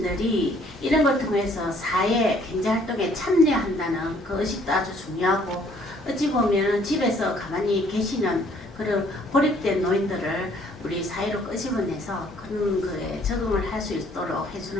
이런 걸 통해서 사회 경제활동에 참여한다는 그 의식도 아주 중요하고 어찌 보면 집에서 가만히 계시는 그런 고립된 노인들을 우리 사회로 끄집어내서 그런 거에 적응을 할 수 있도록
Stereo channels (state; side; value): normal; both; correlation 0.61